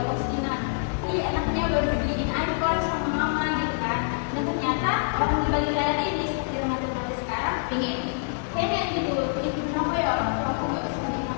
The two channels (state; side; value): silent; right; 61 dB below the other